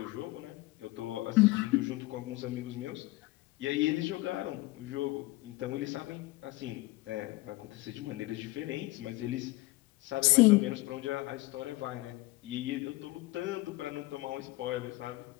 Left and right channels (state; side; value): quieter; right; 20.1 dB